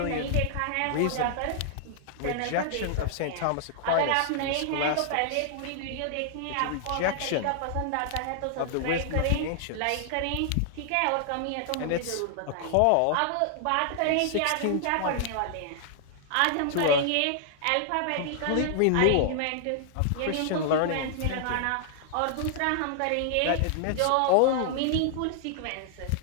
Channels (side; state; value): both; different; correlation -0.01